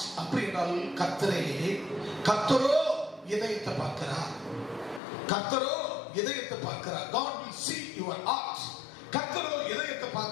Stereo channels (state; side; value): drops out; right; at 5.0 s